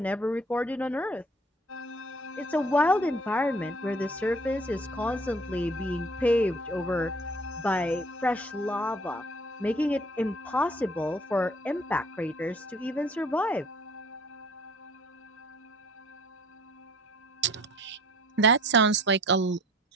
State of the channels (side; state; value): both; normal; correlation 0.54